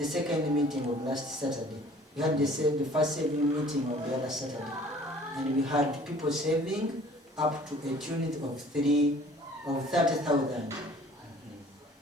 meeting of last Saturday. We had the first saving meeting on the other Saturday, and we had people saving up to a tune of 30,000.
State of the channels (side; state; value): both; normal; correlation 0.52